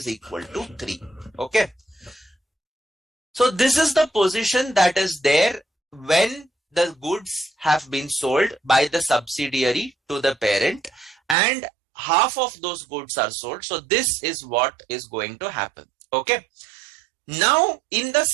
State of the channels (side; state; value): left; drops out; at 11.4 s